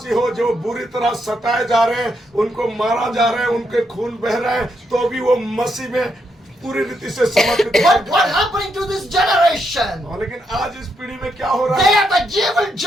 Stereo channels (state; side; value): normal; both; correlation 0.79